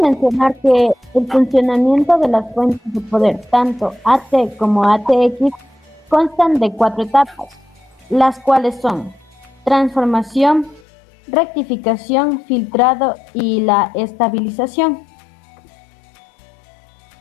mencionar que el funcionamiento de las fuentes de poder, tanto AT como ATX, constan de 4 etapas, las cuales son transformación, rectificación, filtrado y la estabilización.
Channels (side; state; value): right; drops out; at 10.8 s